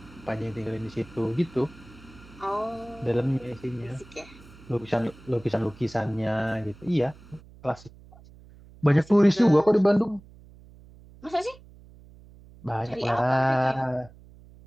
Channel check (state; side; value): noise; right; hum, 22 dB below the sound